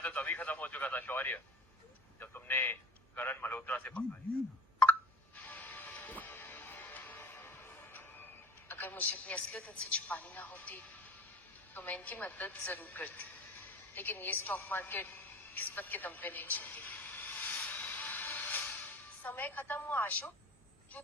तो तभी खत्म हो चुका था शौर्य, जब तुमने करण मल्होत्रा से पकड़ा लिया था। अगर मुझे अपनी असलियत इनसे छुपानी ना होती तो मैं इनकी मदद जरूर करती, लेकिन ये स्टॉक मार्केट किस्मत के दम पे नहीं चलती। समय खत्म हुआ आशु,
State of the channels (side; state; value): both; normal; correlation 0.42